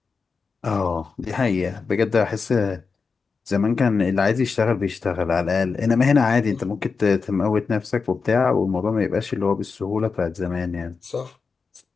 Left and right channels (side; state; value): right; quieter; 5.0 dB